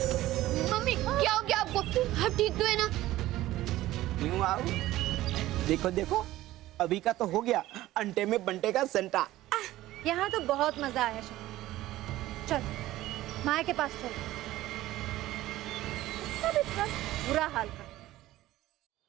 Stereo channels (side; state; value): left; quieter; 15.8 dB